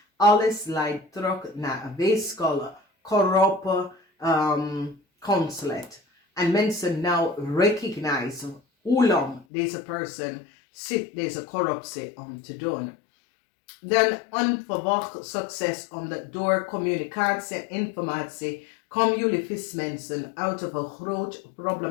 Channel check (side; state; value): right; drops out; at 9.5 s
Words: Alles leidt terug naar een weeskale, corrupte consulate. En mensen nou recognize hoe lang deze persoon zit deze corruptie om te doen. Dan onverwacht succes omdat door communicatie en informatie komen jullie vismensen uit een groot